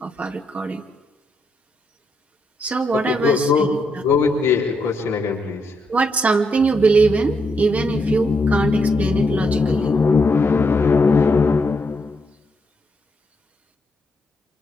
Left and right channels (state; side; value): normal; both; correlation 0.79